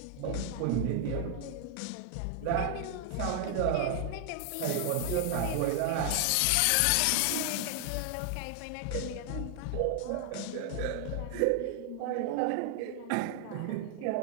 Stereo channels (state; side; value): different; both; correlation 0.00